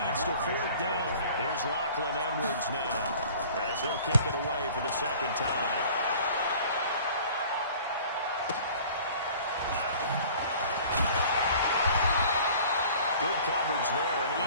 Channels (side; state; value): both; inverted; correlation -0.48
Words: to 4th down. Here's Lachlan Edwards now as he'll kick it away for the 2nd time. Good coverage there, an